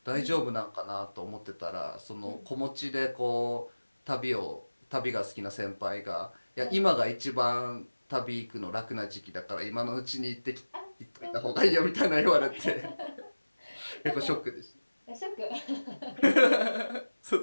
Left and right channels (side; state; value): both; inverted; correlation -1.00